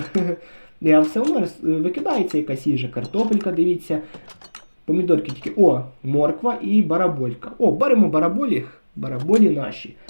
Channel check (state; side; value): inverted; both; correlation -1.00